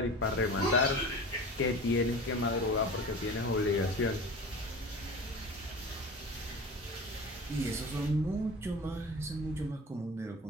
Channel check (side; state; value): both; normal; correlation 0.35